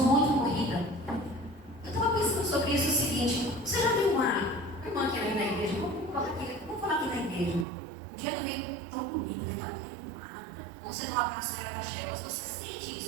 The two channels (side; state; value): left; drops out; at 7.7 s